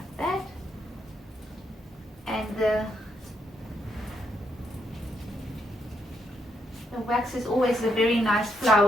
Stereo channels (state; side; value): normal; both; correlation 0.77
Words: The wax is always a very nice